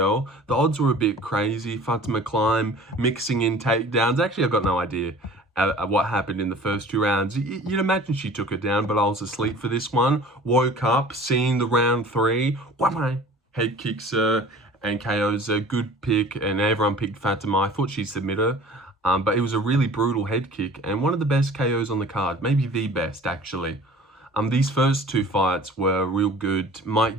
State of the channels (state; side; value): normal; both; correlation 0.45